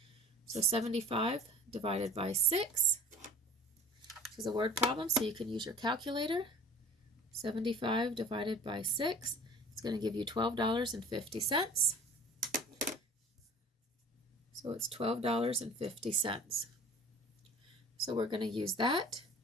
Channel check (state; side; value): normal; both; correlation 0.44